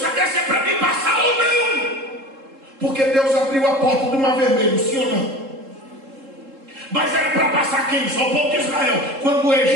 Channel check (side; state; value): left; late; 3.7 ms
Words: saber se é para mim passar ou não, porque Deus abriu a porta do Mar Vermelho, sim ou não? Mas era para passar quem? Só o povo de Israel. Quando o